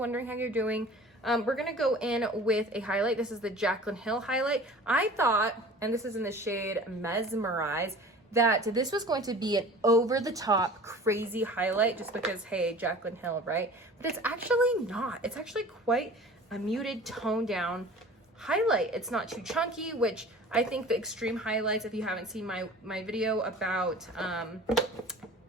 how you're doing. We're gonna go in with a highlight. This is the Jaclyn Hill highlight. I thought, and this is in the shade Mesmerize, that this was going to be an over-the-top crazy highlight, just because, hey, Jaclyn Hill, right? But it's actually not. It's actually quite a muted, toned down highlight. It's not too chunky, which I think the extreme highlights, if you haven't seen my video about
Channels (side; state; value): both; normal; correlation 0.43